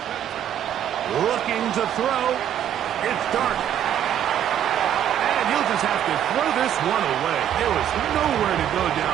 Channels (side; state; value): left; quieter; 10.2 dB